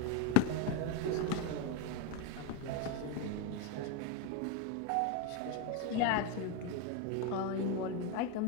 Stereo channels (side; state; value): both; different; correlation 0.02